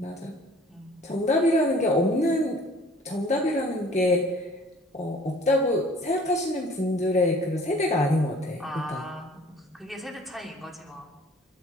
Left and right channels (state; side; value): normal; both; correlation 0.51